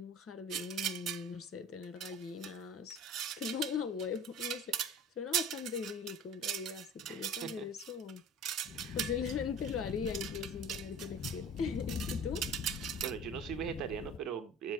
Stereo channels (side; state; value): both; normal; correlation 0.40